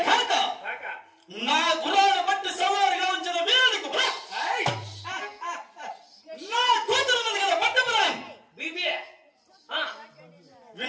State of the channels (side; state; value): both; identical; correlation 1.00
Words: కాక కాక నా గుర్రాన్ని బట్టి సవారిగా ఉంచిన వీరుడికి ఏయ్! నా కూతురు ఉంది కదా పట్టపురాన్ బీబీ